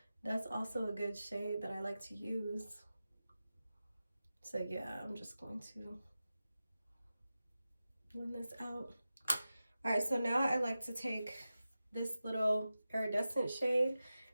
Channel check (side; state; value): both; inverted; correlation -0.93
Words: That's also a good shade that I like to use. So yeah, I'm just going to blend this out. All right, so now I like to take this little iridescent shade